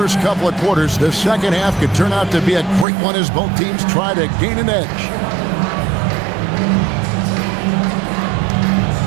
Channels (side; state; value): left; drops out; at 2.9 s